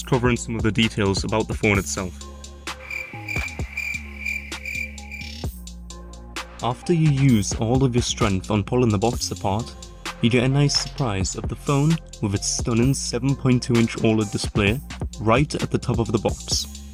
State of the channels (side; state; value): both; identical; correlation 1.00